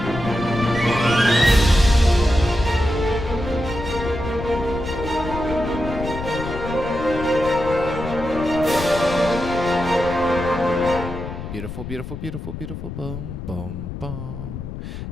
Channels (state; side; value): noise; left; rumble, 8 dB below the sound